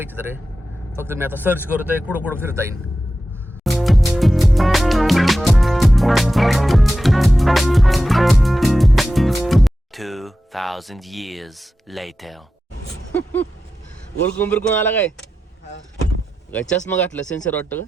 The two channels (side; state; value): both; normal; correlation 0.92